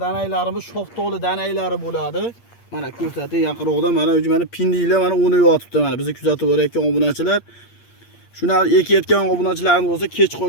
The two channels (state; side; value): late; right; 8.6 ms